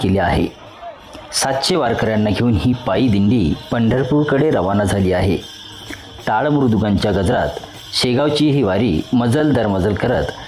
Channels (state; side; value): identical; both; correlation 1.00